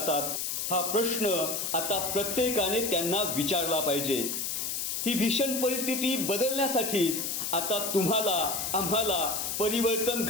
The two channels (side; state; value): left; noise; hiss, 2 dB below the sound